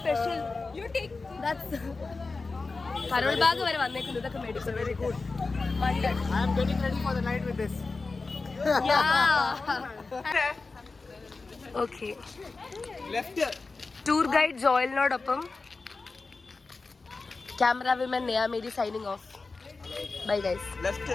You take. That's Karol Bagh വരെ വന്നേക്കുന്നു, ഇതൊക്കെ മേടിച്ചു. Very good. Wondered. I am getting ready for the night with this. Yeah. Okay. Left. Tour guide ജോയലിനോടൊപ്പം camera women Neya Mary signing off. Bye guys. Left.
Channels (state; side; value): quieter; right; 3.9 dB